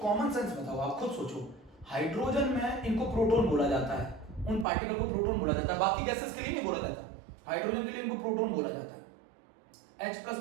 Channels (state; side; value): drops out; left; at 4.7 s